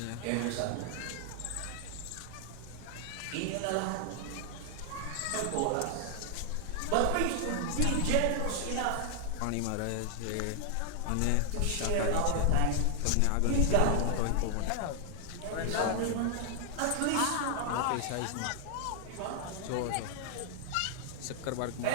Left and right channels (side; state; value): both; different; correlation 0.00